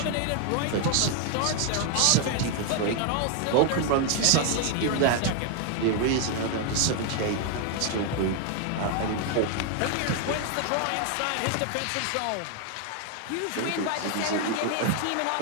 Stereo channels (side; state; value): both; different; correlation 0.00